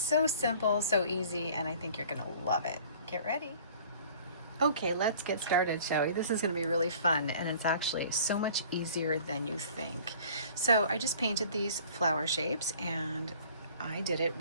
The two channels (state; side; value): inverted; both; correlation -0.50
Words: simple, so easy, and I think you're going to love it. Get ready. Okay, let's get started, shall we? This is going to be really fun, and it's actually so much easier than you think. So I just painted these flower shapes, and I did it